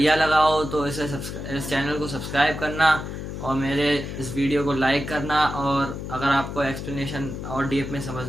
लगा हो तो इस चैनल को सब्सक्राइब करना और मेरे इस वीडियो को लाइक करना। और अगर आपको एक्सप्लेनेशन और डीप में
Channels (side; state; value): left; noise; hum, 7 dB below the sound